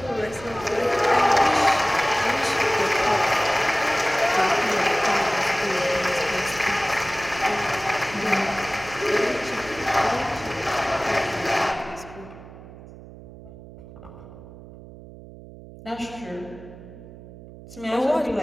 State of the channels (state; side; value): noise; right; hum, 17 dB below the sound